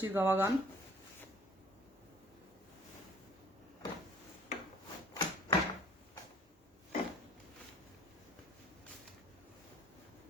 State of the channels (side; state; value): both; normal; correlation 0.52